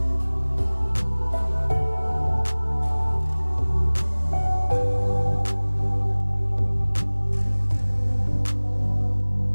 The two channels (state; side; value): inverted; both; correlation -1.00